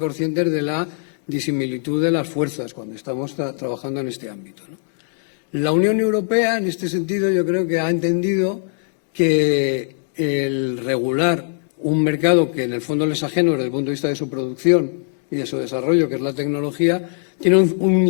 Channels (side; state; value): right; silent; digital silence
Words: de la disimilitud de las fuerzas cuando estamos trabajando en este ámbito, ¿no? La Unión Europea, en este sentido, yo creo que ha entendido que el regular un mercado que en el fondo les es ajeno desde el punto de vista de su producción y de su desarrollo, que es la tecnología, tiene un